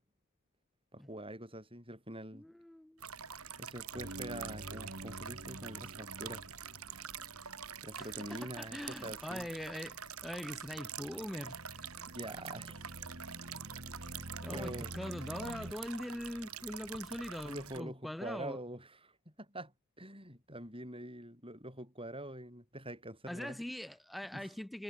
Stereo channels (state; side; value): normal; both; correlation 0.59